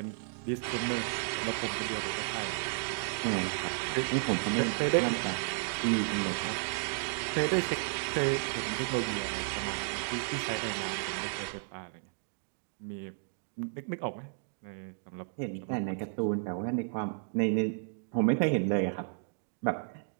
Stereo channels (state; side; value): silent; left; digital silence